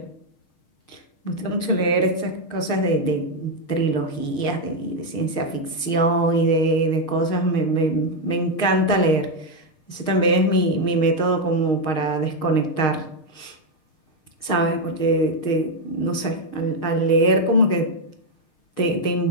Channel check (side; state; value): right; late; 6.5 ms